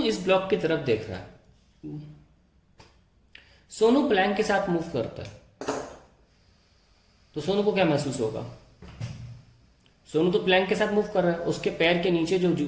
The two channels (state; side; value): identical; both; correlation 1.00